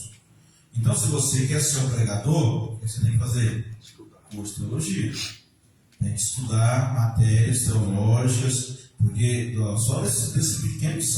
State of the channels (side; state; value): both; identical; correlation 1.00